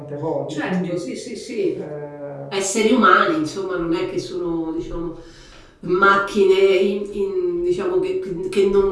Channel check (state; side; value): identical; both; correlation 1.00